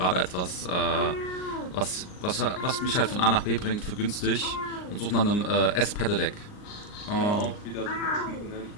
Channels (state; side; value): late; right; 39 ms